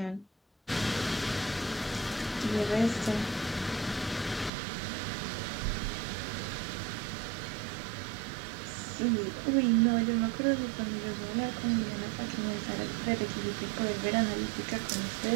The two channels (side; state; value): left; drops out; at 4.5 s